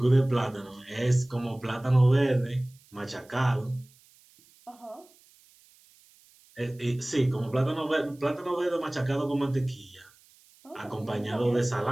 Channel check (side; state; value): right; noise; hiss, 29 dB below the sound